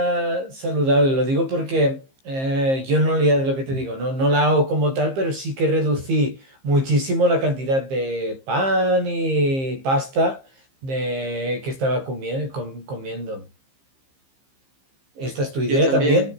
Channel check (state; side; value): late; left; 15 ms